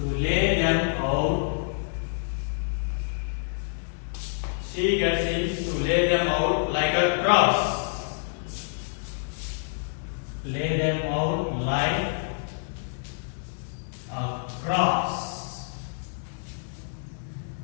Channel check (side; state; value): right; silent; 60 dB below the other